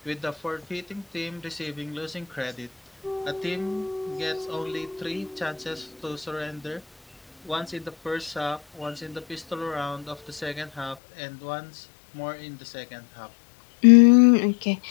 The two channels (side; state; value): right; drops out; at 11.0 s